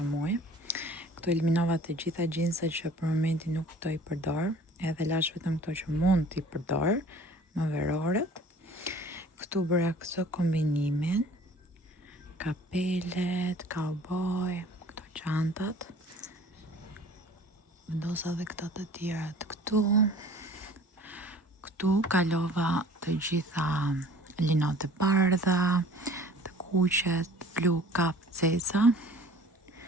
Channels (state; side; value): normal; both; correlation 0.48